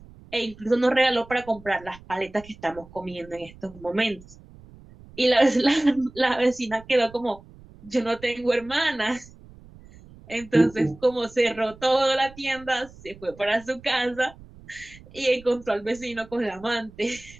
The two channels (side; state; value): right; noise; rumble, 21 dB below the sound